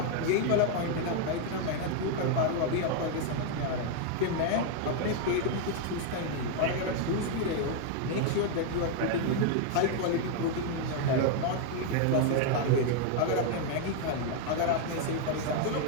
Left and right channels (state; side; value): different; both; correlation 0.00